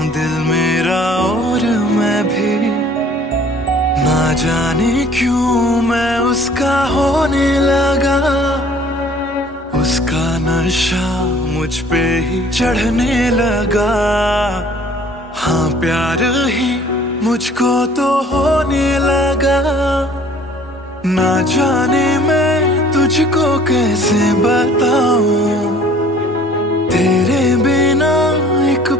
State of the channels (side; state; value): both; normal; correlation 0.53